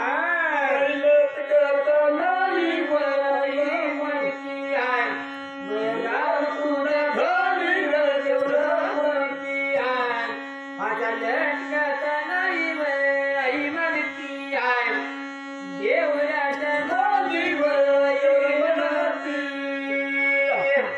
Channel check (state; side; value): identical; both; correlation 1.00